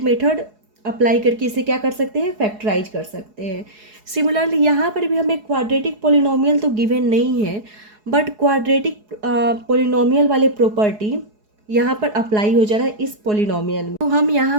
method apply करके इसे क्या कर सकते हैं? फैक्टराइज कर सकते हैं। सिमिलरली यहाँ पर भी हमें क्वाड्रेटिक पोलिनोमियल तो गिवन नहीं है, बट क्वाड्रेटिक पोलिनोमियल वाले प्रॉपर्टी यहाँ पर अप्लाई हो जा रहा है इस पोलिनोमियल में। तो हम यहाँ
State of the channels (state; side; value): late; left; 4.7 ms